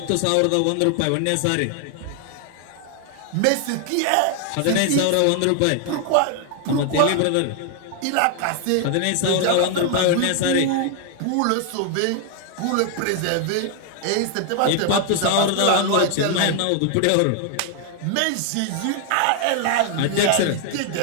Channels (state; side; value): different; both; correlation 0.00